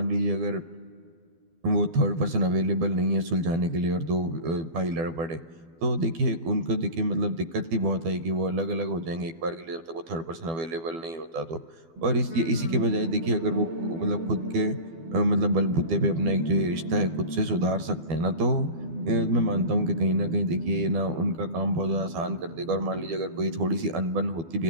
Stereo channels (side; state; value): left; late; 12 ms